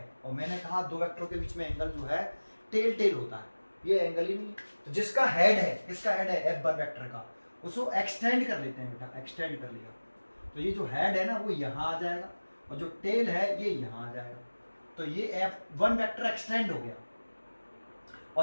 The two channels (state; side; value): inverted; both; correlation -1.00